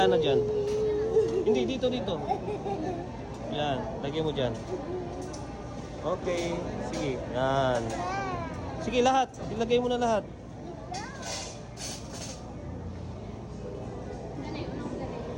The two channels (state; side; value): identical; both; correlation 1.00